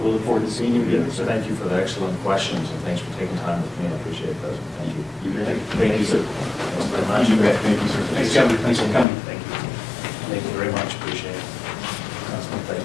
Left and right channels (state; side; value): drops out; right; at 9.1 s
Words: look forward to seeing you again, sir. Thank you for the excellent questions, and thanks for taking time with me. I appreciate that. Thank you. You bet. Thank you, sir. Thanks very much. You bet. Thank you, sir. Thanks, Governor. Thanks for coming. Thank you. Thank you very much. Appreciate it.